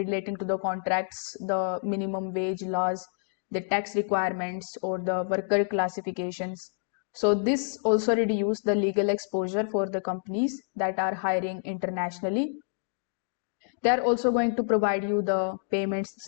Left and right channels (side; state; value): right; silent; digital silence